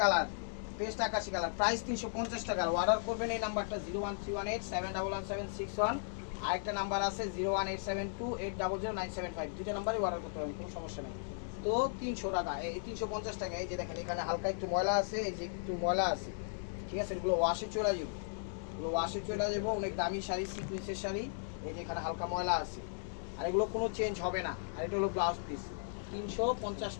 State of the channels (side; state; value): right; silent; digital silence